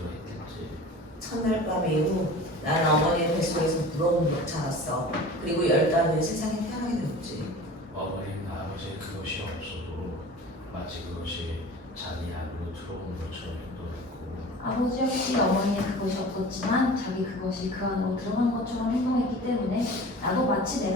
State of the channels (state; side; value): normal; both; correlation 0.39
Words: 했겠지. 첫날 밤 이후 나는 어머니의 뱃속에서 부러움으로 자랐어. 그리고 10달 후에 세상에 태어나게 되었지. 어머니는 아버지의 그것이 없어도 마치 그것이 자기 안으로 들어온 것처럼 행동했고 아버지 역시 어머니의 그것이 없었지만 자기 그것이 그 안으로 들어간 것처럼 행동했기 때문에 나도 마치